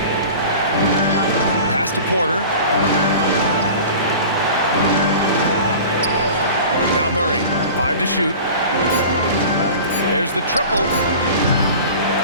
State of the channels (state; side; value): inverted; both; correlation -0.38